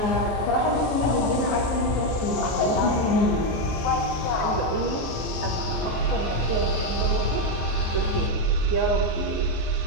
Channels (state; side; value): late; right; 14 ms